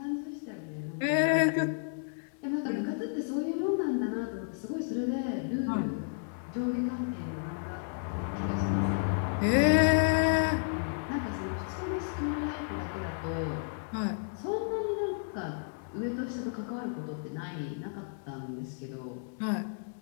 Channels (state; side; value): silent; right; digital silence